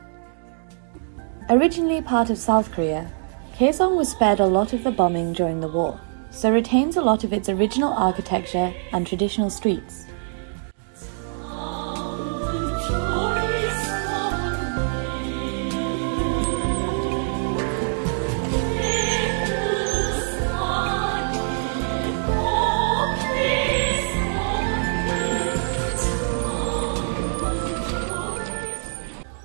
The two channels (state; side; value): silent; left; digital silence